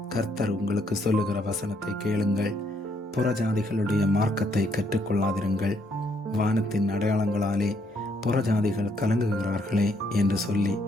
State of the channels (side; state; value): both; normal; correlation 0.71